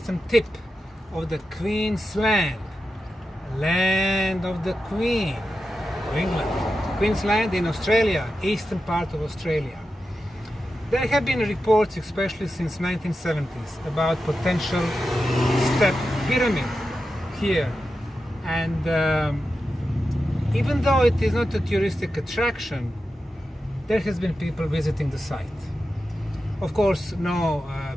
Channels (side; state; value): both; normal; correlation 0.91